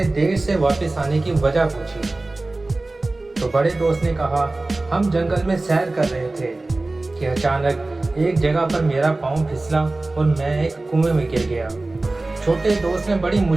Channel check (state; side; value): quieter; left; 3.0 dB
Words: دیر سے واپس آنے کی وجہ پوچھی، تو بڑے دوست نے کہا، ہم جنگل میں سیر کر رہے تھے کہ اچانک ایک جگہ پر میرا پاؤں پھسلا اور میں ایک کنویں میں گر گیا۔ چھوٹے دوست نے بڑی